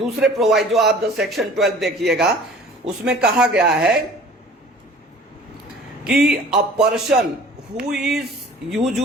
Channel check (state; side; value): normal; both; correlation 0.47